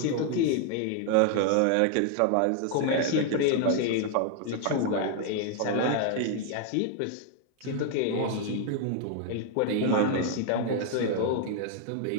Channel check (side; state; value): both; different; correlation 0.00